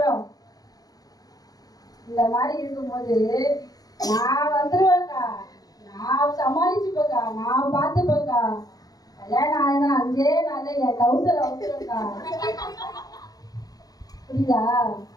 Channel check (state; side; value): late; right; 0.18 ms